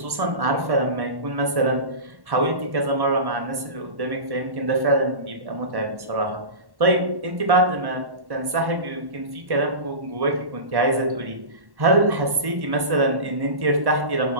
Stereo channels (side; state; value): left; late; 1.1 ms